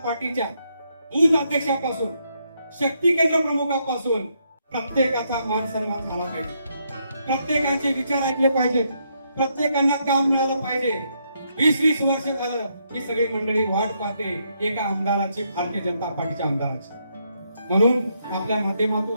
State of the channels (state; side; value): inverted; both; correlation -0.77